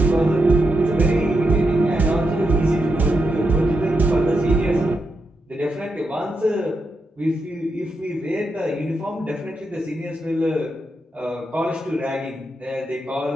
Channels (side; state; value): both; normal; correlation 0.85